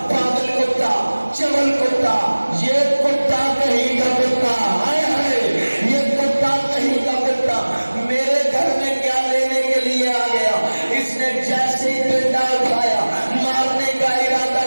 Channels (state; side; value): inverted; both; correlation -1.00